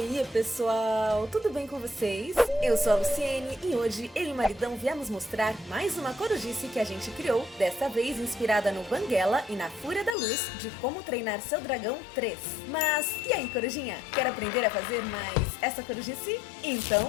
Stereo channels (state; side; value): drops out; right; at 10.2 s